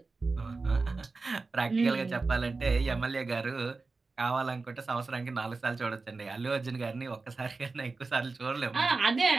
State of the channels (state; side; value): quieter; left; 3.9 dB